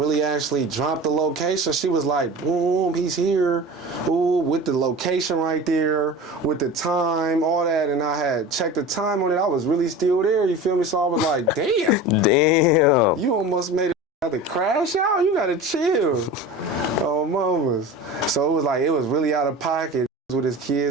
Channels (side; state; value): both; normal; correlation 0.34